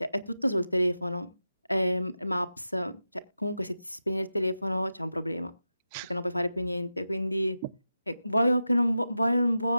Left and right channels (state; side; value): inverted; both; correlation -0.92